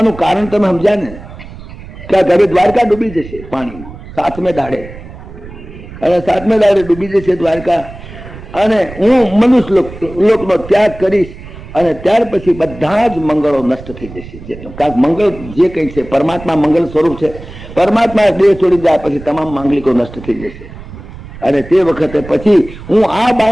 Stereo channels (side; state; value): right; noise; rumble, 15 dB below the sound